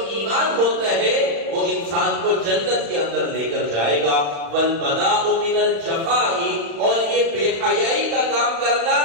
ایمان ہوتا ہے وہ انسان کو جنت کے اندر لے کر جائے گا۔ والبداء من الجفاء، اور یہ بے حیائی کا کام کرنا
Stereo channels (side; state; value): left; late; 35 ms